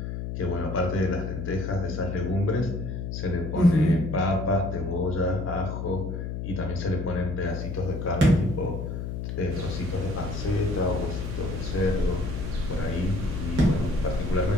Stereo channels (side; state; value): left; noise; hum, 4 dB below the sound